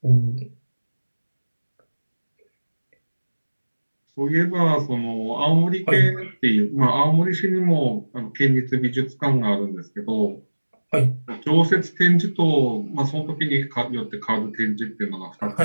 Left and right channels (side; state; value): both; inverted; correlation -1.00